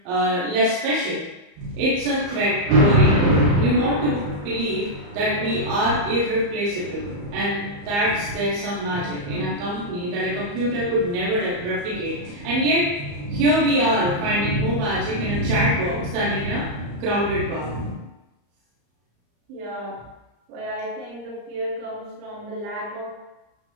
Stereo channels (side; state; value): left; late; 34 ms